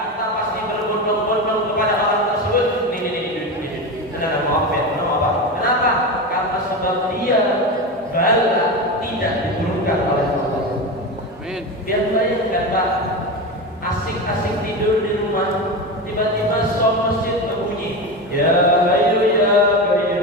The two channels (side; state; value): both; normal; correlation 0.21